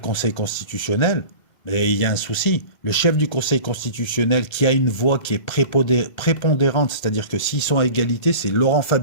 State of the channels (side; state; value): right; late; 2.1 ms